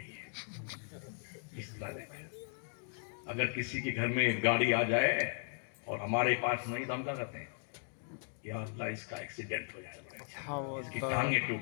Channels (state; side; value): silent; right; 53 dB below the other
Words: گی اس طرح۔ اگر کسی کے گھر میں گاڑی آ جائے اور ہمارے پاس نہیں تو ہم کیا کرتے ہیں، یا اللہ اس کا ایکسیڈنٹ ہو جائے، اس کی ٹانگیں ٹوٹ